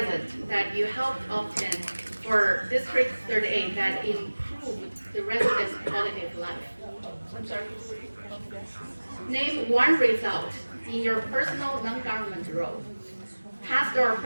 that you helped obtain for District 38 that improved the residents' quality of life. I'm sorry. Name one result in your personal non-government role, past or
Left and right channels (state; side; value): inverted; both; correlation -1.00